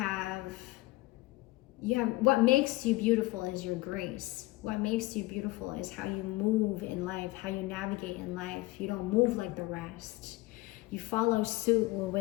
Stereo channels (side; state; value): right; quieter; 20.1 dB